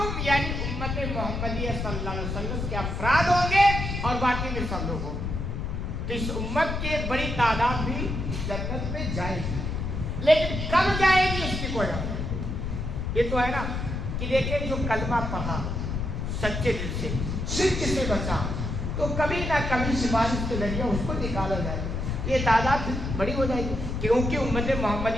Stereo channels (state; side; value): noise; left; rumble, 3 dB below the sound